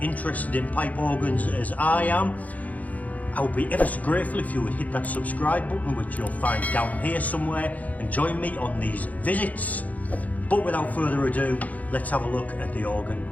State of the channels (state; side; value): late; right; 0.075 ms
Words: in pipe organs as I am, I would be ever so grateful if you would hit that subscribe button, which you'll find down here somewhere, and join me on these visits. But without further ado, let's have a look at the